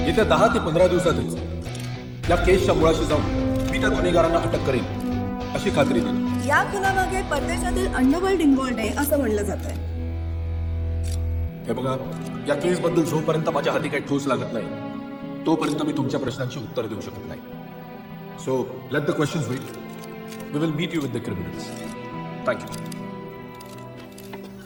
येत्या 10 ते 15 दिवसातच या केसच्या मुळाशी जाऊन मी त्या गुन्हेगारांना अटक करेन अशी खात्री दिली. या खुनामागे परदेशातील अंडरवर्ल्ड इन्व्हॉल्ड आहे असं म्हणलं जात आहे. हे बघा, या केसबद्दल जोपर्यंत माझ्या हाती काही ठोस लागत नाही तोपर्यंत मी तुमच्या प्रश्नांची उत्तर देऊ शकत नाही. So let the questions wait. We will meet you with the criminals. Thank you.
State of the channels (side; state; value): both; identical; correlation 1.00